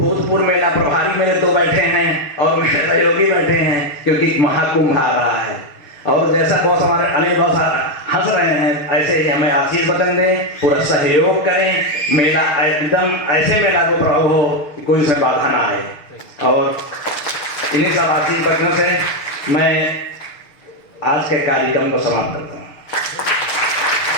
मेला प्रभारी मेरे 2 बैठे हैं और मेरे सहयोगी बैठे हैं, क्योंकि महाकुंभ आ रहा है। और जैसा बॉस हमारे अनिल बॉस हंस रहे हैं, ऐसे ही हमें आशीर्वाद दें, पूरा सहयोग करें, मेला एकदम ऐसे मेला को प्रभाव हो कि कोई उसमें बाधा ना आए। और इन्हीं सब आशीर्वादों से मैं आज के कार्यक्रम को समाप्त करता हूँ।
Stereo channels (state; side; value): late; right; 6.6 ms